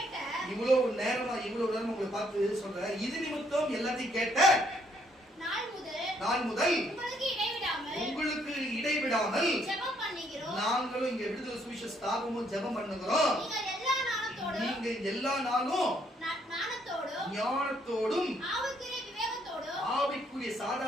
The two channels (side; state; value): both; normal; correlation 0.69